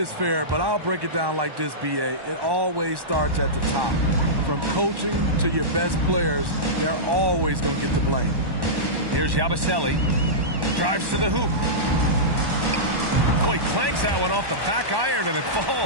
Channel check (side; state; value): left; late; 1.1 ms